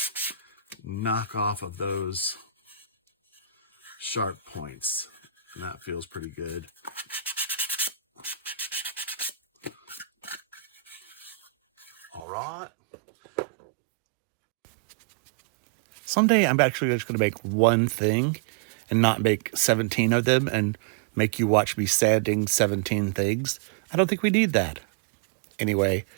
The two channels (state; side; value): drops out; left; at 12.2 s